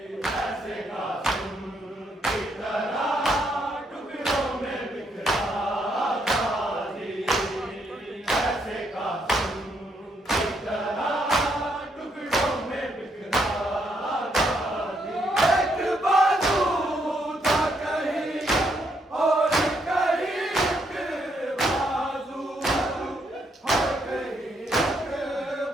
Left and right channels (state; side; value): normal; both; correlation 0.75